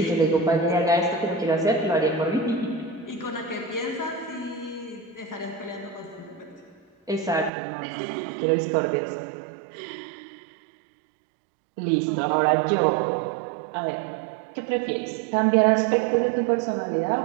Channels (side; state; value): left; drops out; at 7.5 s